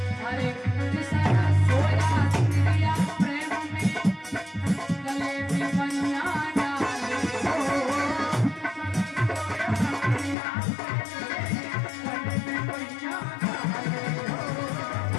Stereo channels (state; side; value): drops out; right; at 10.4 s